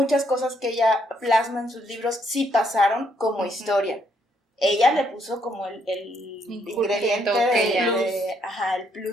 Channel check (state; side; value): normal; both; correlation 0.72